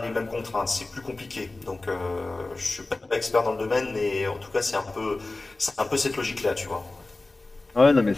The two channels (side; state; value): right; quieter; 3.1 dB